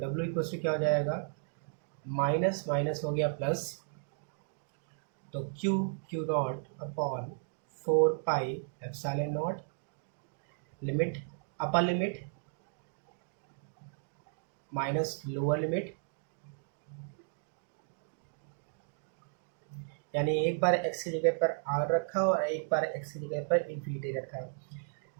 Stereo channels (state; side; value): silent; left; digital silence